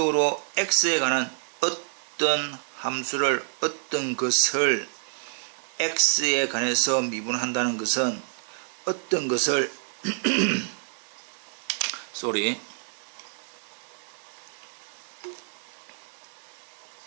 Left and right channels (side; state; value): left; silent; digital silence